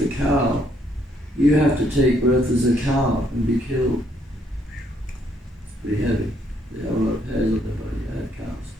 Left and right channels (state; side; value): normal; both; correlation 0.70